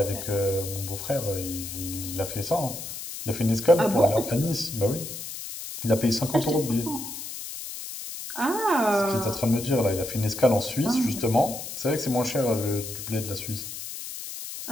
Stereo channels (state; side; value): noise; left; hiss, 9 dB below the sound